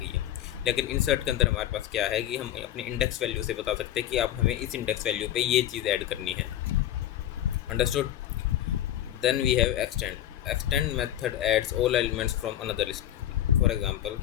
लेकिन इंसर्ट के अंदर हमारे पास क्या है कि हम अपनी इंडेक्स वैल्यू से बता सकते हैं कि आप हमें इस इंडेक्स वैल्यू पे ये चीज़ ऐड करनी है. Understood? Then we have extend. Extend method adds all elements from another list. For example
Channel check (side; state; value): right; quieter; 12.2 dB